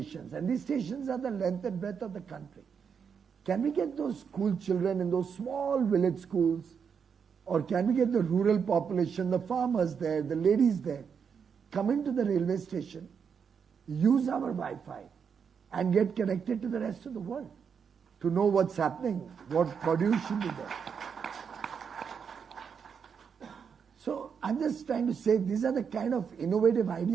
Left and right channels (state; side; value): quieter; left; 6.7 dB